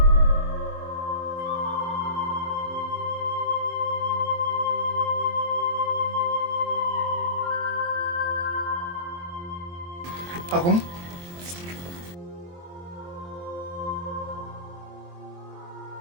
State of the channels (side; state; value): left; late; 23 ms